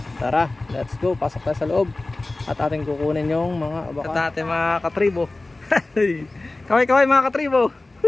Tara, let's go. Pasok tayo sa loob at ating kukunin yung mga abaka at ating mga katribo. Kaway-kaway mga katribo.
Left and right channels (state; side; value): quieter; right; 3.0 dB